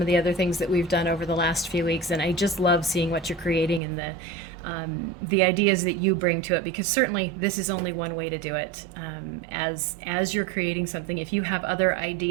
the other things that we've done over the last few weeks, and I just love seeing what you're creating and the ideas that you bring to it, because certainly this is only one way to do it. As you're creating something, if you have other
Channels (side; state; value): left; drops out; at 3.8 s